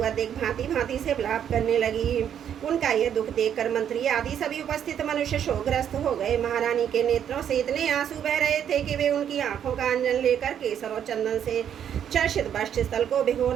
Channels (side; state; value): left; quieter; 9.2 dB